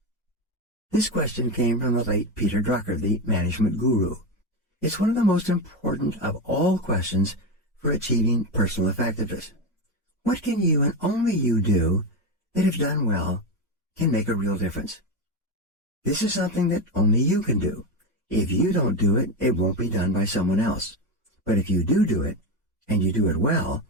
This question came from the late Peter Drucker, the management guru. It's one of the most important of all questions for achieving personal effectiveness. What can you and only you do that, if done well, can make a real difference? This is something that only you can do. If you don't do it, it won't be done by someone else. But if you do it, and you do it well,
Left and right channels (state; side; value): normal; both; correlation 0.15